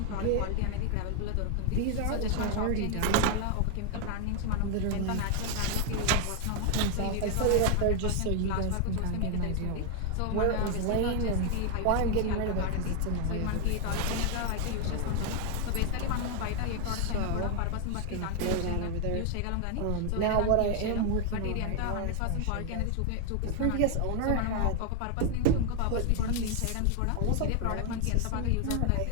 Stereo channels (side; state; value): both; different; correlation 0.01